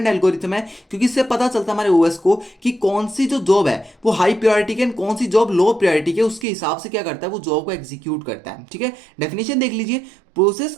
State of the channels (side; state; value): left; drops out; at 6.5 s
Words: एल्गोरिथम है, क्योंकि इससे पता चलता है हमारे ओएस को कि कौन सी जो जॉब है वो हाई प्रायोरिटी की कौन सी जॉब लो प्रायोरिटी की, उसके हिसाब से क्या करता है वो जॉब को एग्जीक्यूट करता है। ठीक है, डेफिनेशन देख लीजिए, process